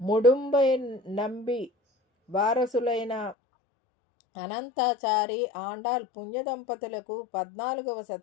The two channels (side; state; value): right; drops out; at 3.4 s